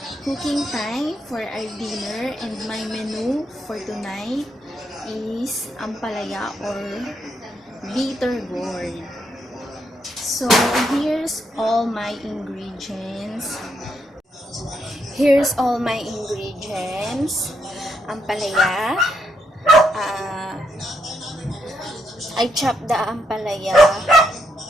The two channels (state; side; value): normal; both; correlation 0.78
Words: cooking time for our dinner, and my menu for tonight is Ampalaya or bitter gourd. So, here's all my ingredients. Ampalaya. I chop the ampalaya